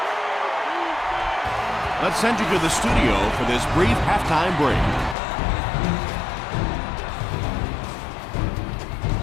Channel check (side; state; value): right; drops out; at 5.2 s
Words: Let's send you to the studio for this brief halftime break.